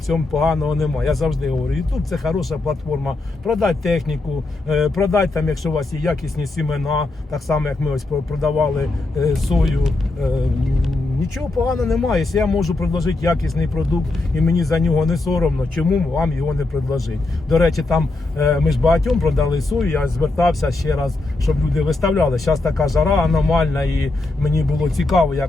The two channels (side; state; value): right; quieter; 3.1 dB